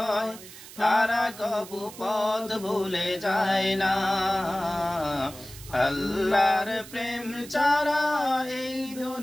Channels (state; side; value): noise; right; hiss, 16 dB below the sound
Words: তারা কবু পথ ভুলে যায় না। আল্লাহর প্রেম ছাড়া এই